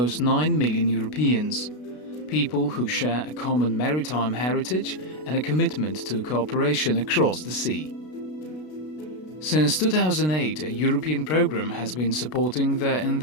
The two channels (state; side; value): late; right; 33 ms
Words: 9 million Europeans, people who share a common maritime heritage and a commitment to cooperation across the sea. Since 2008, a European program has been supporting their